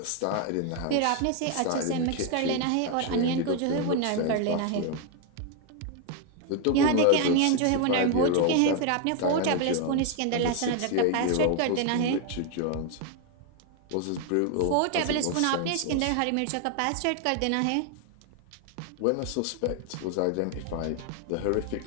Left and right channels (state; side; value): different; both; correlation 0.01